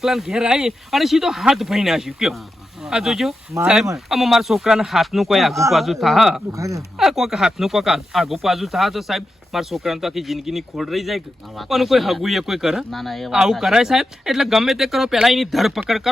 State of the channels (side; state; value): both; normal; correlation 0.89